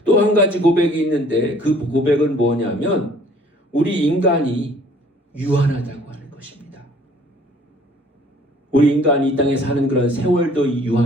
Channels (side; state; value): both; normal; correlation 0.56